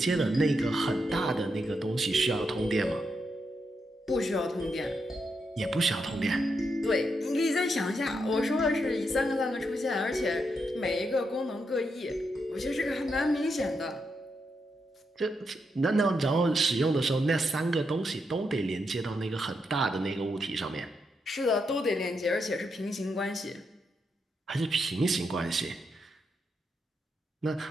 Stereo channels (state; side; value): normal; both; correlation 0.82